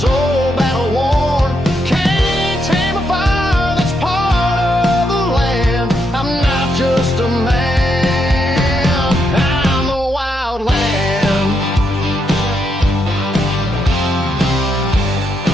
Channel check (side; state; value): both; normal; correlation 0.79